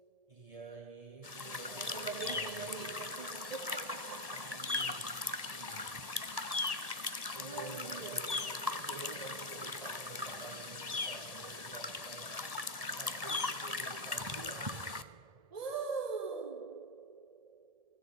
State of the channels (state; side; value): late; left; 1.7 ms